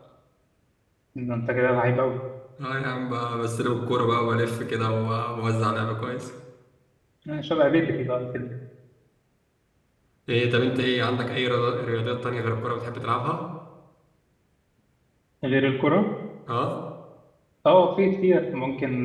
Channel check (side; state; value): both; identical; correlation 1.00